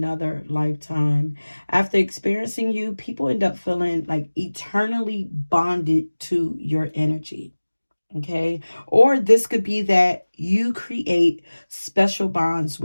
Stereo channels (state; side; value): inverted; both; correlation -1.00